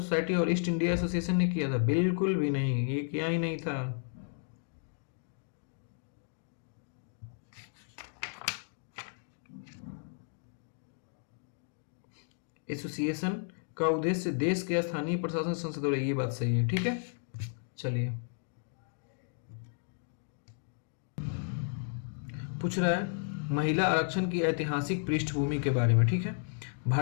और ईस्ट इंडिया एसोसिएशन ने किया था? बिल्कुल भी नहीं, ये किया ही नहीं था। एसोसिएशन का उद्देश्य देश के स्थानीय प्रशासन संसद और ये बात सही है। ठीक है, चलिए, पूछ रहा है महिला आरक्षण की ऐतिहासिक पृष्ठभूमि के बारे में। ठीक है,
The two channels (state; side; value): silent; right; digital silence